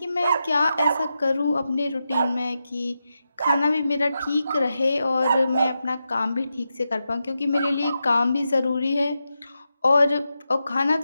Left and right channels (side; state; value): both; inverted; correlation -0.88